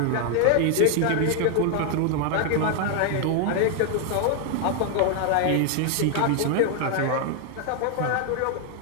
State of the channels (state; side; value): different; both; correlation 0.00